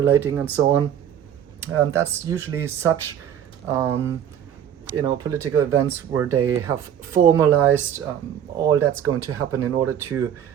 and so on. That's usually such, political events where they have formalized all that's going to happen in order to,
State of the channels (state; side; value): quieter; left; 9.6 dB